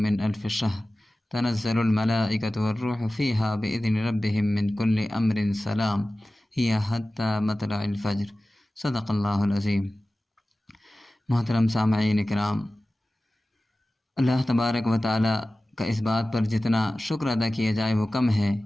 الف شہر، تنزل الملائکۃ والروح فیہا باذن ربہم من کل امر سلام، ہی حتی مطلع الفجر، صدق اللہ العظیم۔ محترم سامعین کرام، اللہ تبارک و تعالیٰ کا اس بات پر جتنا شکر ادا کیا جائے وہ کم ہے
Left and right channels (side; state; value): both; normal; correlation 0.96